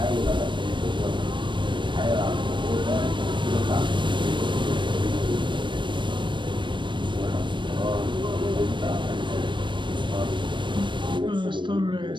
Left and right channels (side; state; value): left; late; 0.23 ms